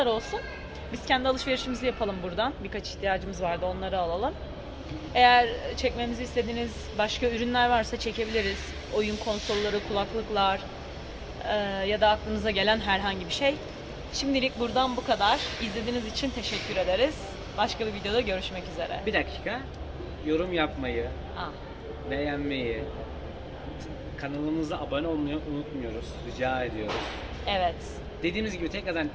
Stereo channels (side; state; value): both; identical; correlation 1.00